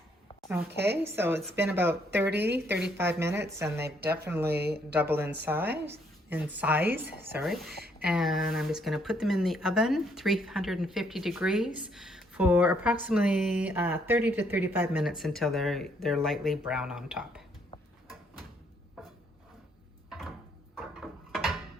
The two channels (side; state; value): both; normal; correlation 0.70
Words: Okay, so it's been about 35 minutes and they've definitely doubled in size, sorry. And I'm just gonna put them in the oven, 350 degrees for approximately 30 to 35 minutes until they're lightly brown on top. There